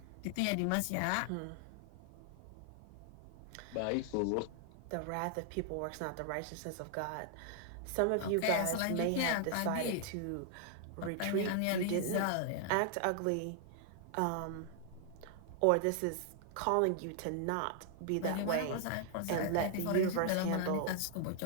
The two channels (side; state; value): both; different; correlation 0.00